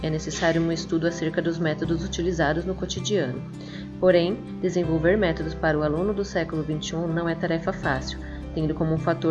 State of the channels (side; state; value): both; identical; correlation 1.00